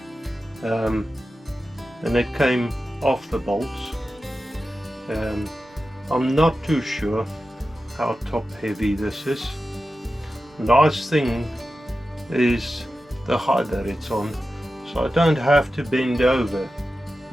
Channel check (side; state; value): both; normal; correlation 0.93